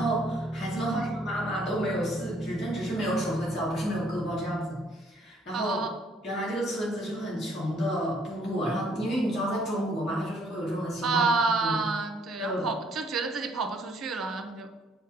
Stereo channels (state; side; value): normal; both; correlation 0.65